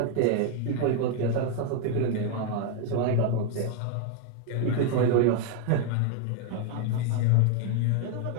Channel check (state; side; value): different; both; correlation 0.01